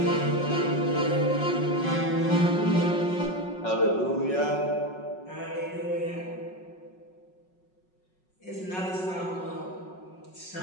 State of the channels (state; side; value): late; right; 5.5 ms